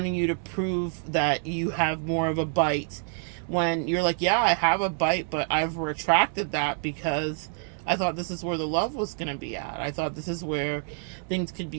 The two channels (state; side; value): silent; left; 56 dB below the other